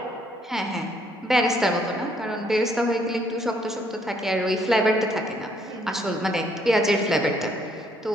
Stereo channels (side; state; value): both; normal; correlation 0.68